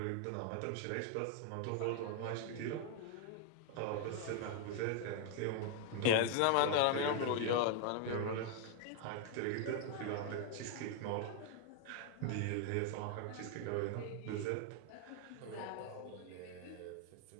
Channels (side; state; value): both; different; correlation 0.00